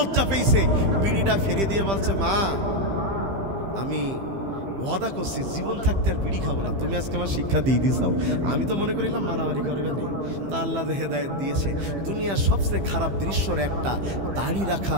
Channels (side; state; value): left; late; 15 ms